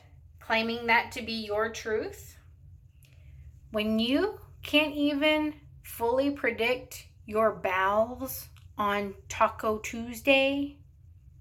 claiming that to be your truth? When you can't even fully predict your bowels on Taco Tuesday,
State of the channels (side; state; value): both; identical; correlation 1.00